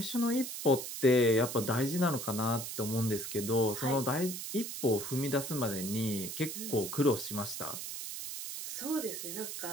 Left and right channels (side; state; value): right; noise; hiss, 6 dB below the sound